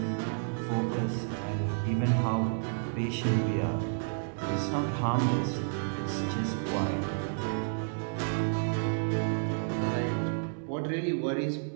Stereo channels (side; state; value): left; silent; 57 dB below the other